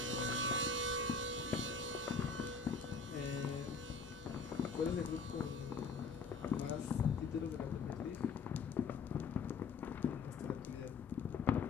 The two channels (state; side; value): quieter; right; 4.8 dB